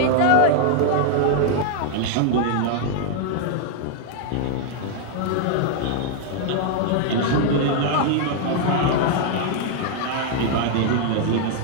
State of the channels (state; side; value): different; both; correlation 0.00